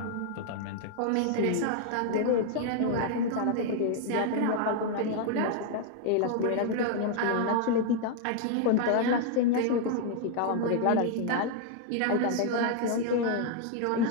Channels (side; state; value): both; different; correlation 0.00